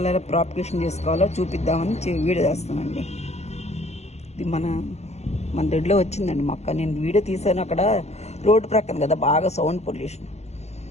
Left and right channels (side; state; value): right; late; 0.32 ms